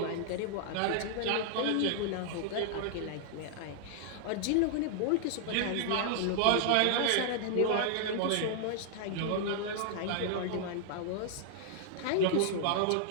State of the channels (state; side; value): different; both; correlation -0.01